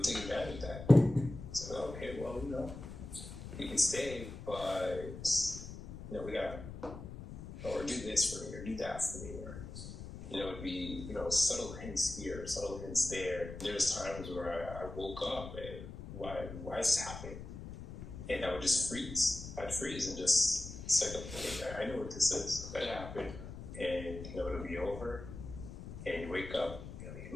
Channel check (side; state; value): left; noise; rumble, 10 dB below the sound